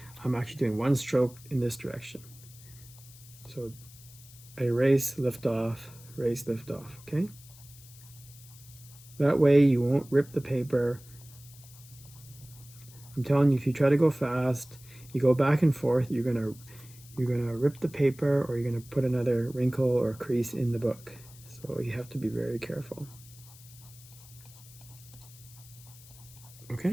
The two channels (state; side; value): noise; left; hiss, 21 dB below the sound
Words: I'm actually doing one stroke in this direction. So erase, lift off, erase, lift off, okay? That way you won't rip the paper. I'm telling you, if you try to go fast, you go back and forth, you're gonna rip the paper, or you're gonna put another wrinkle or crease in the book. So you have to be very careful.